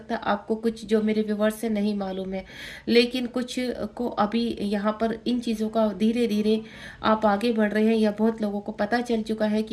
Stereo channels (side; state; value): both; identical; correlation 1.00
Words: है आपको कुछ जो मेरे व्यूवर्स से नहीं मालूम है, लेकिन कुछ को अभी यहाँ पर इन चीज़ों का धीरे धीरे आप आगे बढ़ रहे हैं, या बहुत लोगों को पता चल चुका है